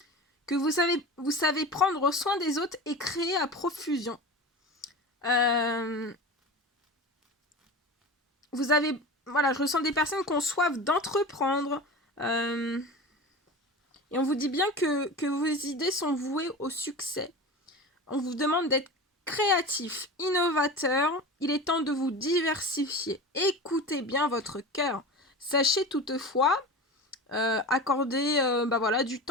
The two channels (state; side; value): normal; both; correlation 0.30